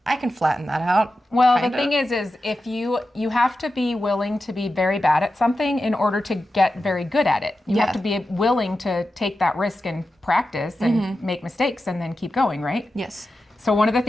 I can flatten that out. Well, kinda. the thing is if you have to be willing to be very bad at something in order to get very good at it. You have to be willing to take that risk and practice and make mistakes and then keep going, right? Yes. So one of the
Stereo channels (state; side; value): normal; both; correlation 0.91